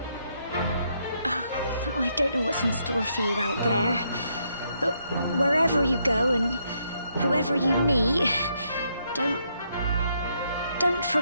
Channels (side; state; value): both; inverted; correlation -0.76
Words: I don't know what's in store for you out there, but wherever you go and whoever you meet, don't